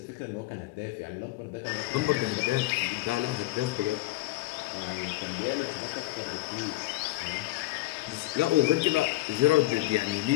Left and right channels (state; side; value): quieter; right; 18.0 dB